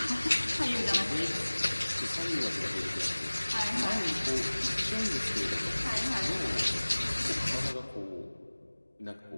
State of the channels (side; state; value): both; inverted; correlation -1.00